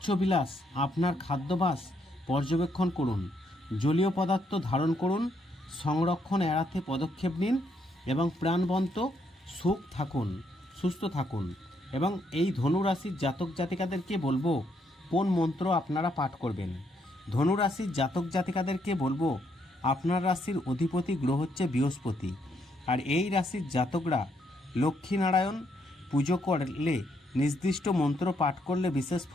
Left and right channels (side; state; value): both; normal; correlation 0.74